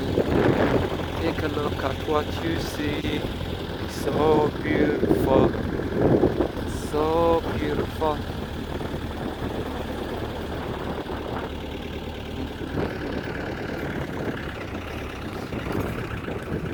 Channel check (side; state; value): both; identical; correlation 1.00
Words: Take a look at what you see. So beautiful, so beautiful.